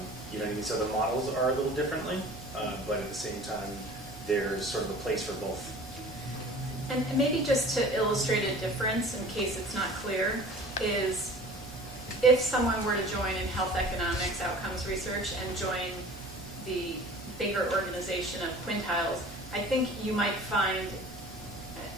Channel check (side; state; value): both; normal; correlation 0.44